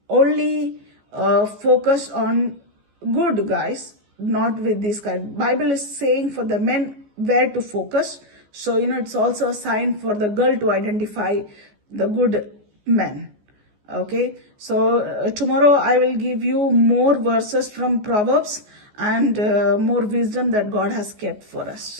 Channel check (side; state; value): left; late; 14 ms